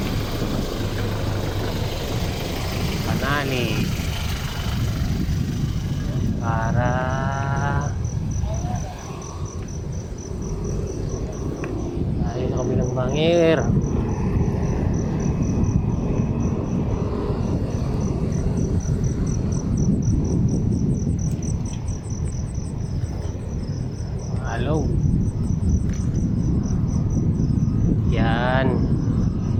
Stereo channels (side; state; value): both; identical; correlation 1.00